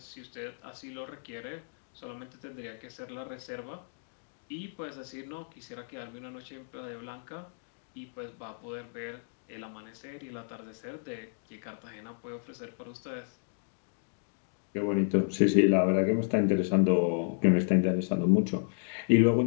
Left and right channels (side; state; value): right; silent; digital silence